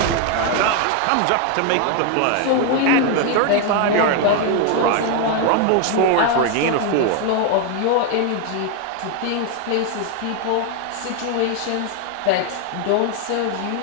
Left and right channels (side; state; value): both; different; correlation 0.01